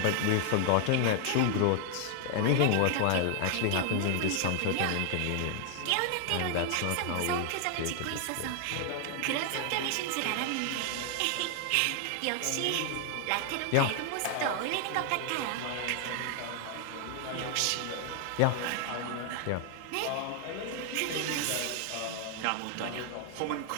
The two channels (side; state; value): both; different; correlation 0.00